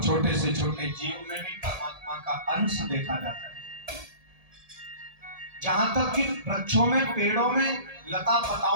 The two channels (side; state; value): left; late; 1.7 ms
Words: छोटे से छोटे जीव में भी परमात्मा का अंश देखा जाता है। जहां तक कि वृक्षों में, पेड़ों में, लता